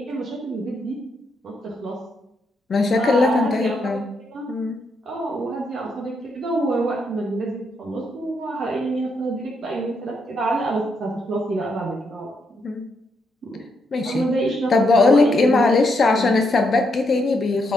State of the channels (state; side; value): normal; both; correlation 0.78